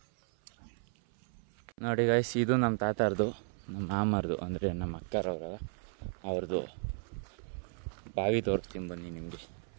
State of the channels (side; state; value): left; silent; 55 dB below the other